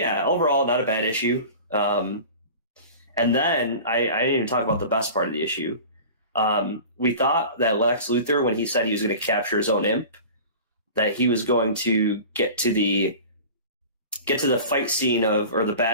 overall, not a bad issue. And then I didn't even talk about the best part of the issue. We thought that Lex Luthor, when he said he was going to capture his own imp, that he was going to get to the fight scene or the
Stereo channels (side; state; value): both; inverted; correlation -0.38